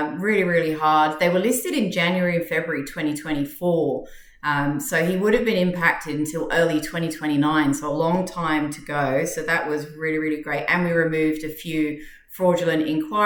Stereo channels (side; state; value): both; identical; correlation 1.00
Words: really, really hard. They were listed in January and February 2024. So he would have been impacted until early 2029, so a long time to go. So that was really, really great. And we removed a few fraudulent